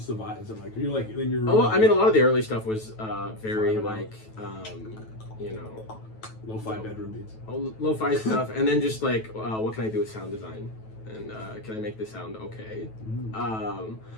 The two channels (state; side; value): late; right; 9.2 ms